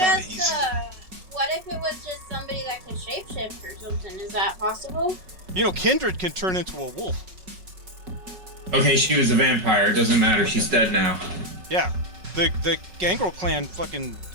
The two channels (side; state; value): left; late; 5.4 ms